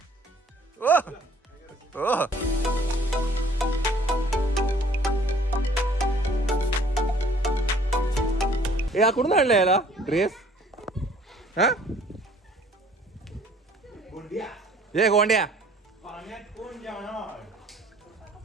ओ ओ ए कुठून आणलं याला ड्रेस. हा ये गोंड्या.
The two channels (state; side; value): normal; both; correlation 0.56